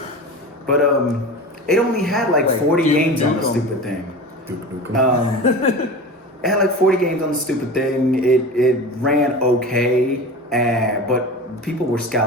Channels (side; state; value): both; normal; correlation 0.32